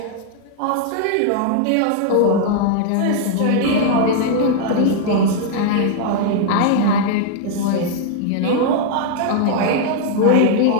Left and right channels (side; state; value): both; different; correlation 0.00